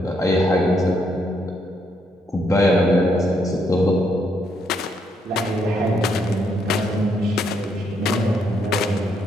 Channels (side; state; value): both; normal; correlation 0.75